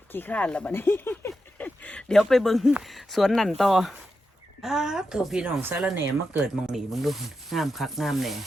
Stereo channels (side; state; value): both; normal; correlation 0.88